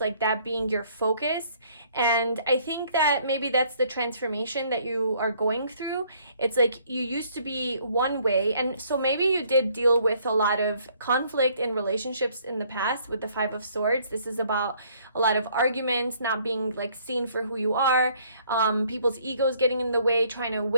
that being your focus. And I think that maybe that's the transformation that you are going through. It's like you used to be one way, and so maybe you did deal with a lot of conflict in relationships in the past with the Five of Swords. This is about a lot of arguments, not being like seen for who you are, people's egos getting in the way, trying to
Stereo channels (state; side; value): inverted; both; correlation -0.63